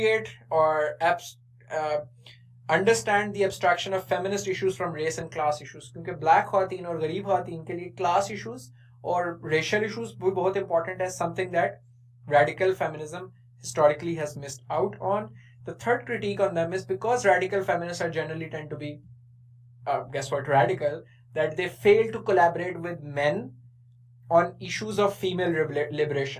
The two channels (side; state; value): both; identical; correlation 1.00